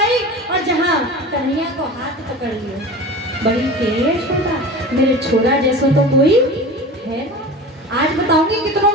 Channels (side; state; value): both; normal; correlation 0.34